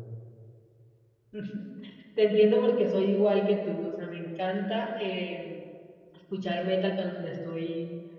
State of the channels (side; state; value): both; identical; correlation 1.00